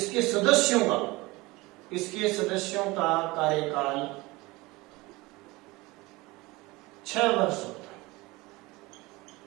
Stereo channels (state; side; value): quieter; left; 22.1 dB